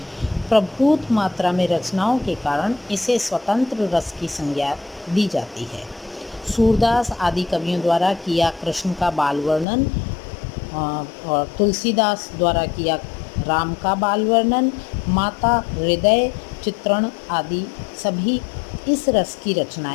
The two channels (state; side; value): drops out; right; at 9.7 s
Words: प्रभूत मात्रा में रचनाओं के कारण इसे स्वतंत्र रस की संज्ञा दी जाती है। सूरदास आदि कवियों द्वारा किया कृष्ण का बाल वर्णन और तुलसीदास द्वारा किया राम का बाल वर्णन, माता हृदय चित्रण आदि सभी इस रस की